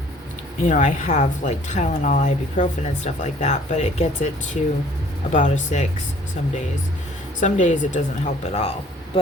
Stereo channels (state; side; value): normal; both; correlation 0.55